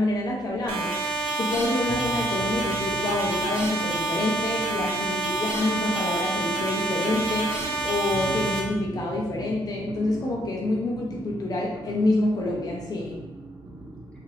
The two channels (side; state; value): both; normal; correlation 0.69